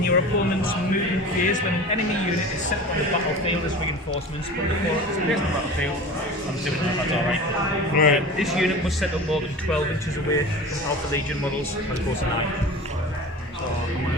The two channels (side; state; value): both; normal; correlation 0.35